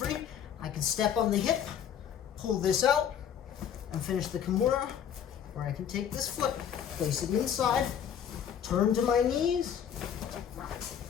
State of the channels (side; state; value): right; quieter; 8.7 dB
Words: I can step on the hip, pull this out, and finish the kimura. Where I can take this foot, place it inside, turn to my knees,